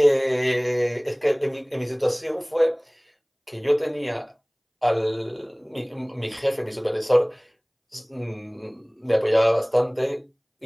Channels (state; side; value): identical; both; correlation 1.00